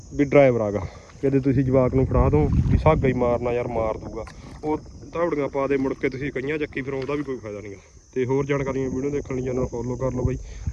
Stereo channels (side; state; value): both; identical; correlation 1.00